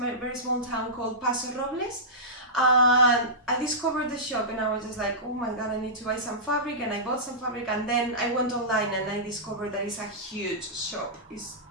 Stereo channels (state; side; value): normal; both; correlation -0.16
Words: small town called Paso Robles. And I discovered the shop, and I was just like, oh my god, I need to buy some fabric, and I bought some fabric, and then I went online and I discovered that it's a huge shop. It's